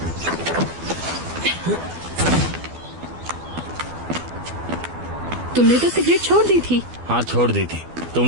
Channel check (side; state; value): left; late; 12 ms